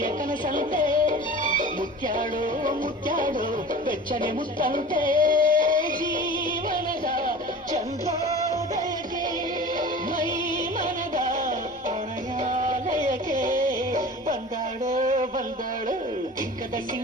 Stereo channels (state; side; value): normal; both; correlation 0.38